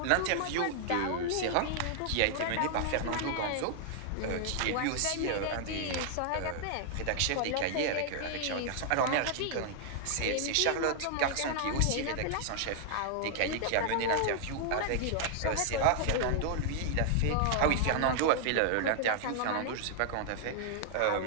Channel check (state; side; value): different; both; correlation -0.01